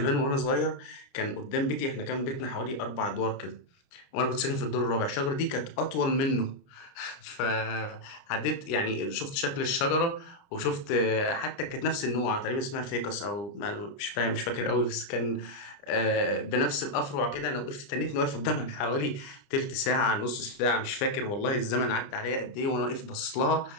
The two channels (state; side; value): late; right; 29 ms